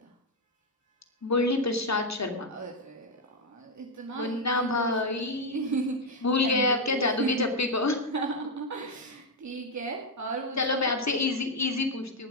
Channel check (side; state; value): both; normal; correlation 0.03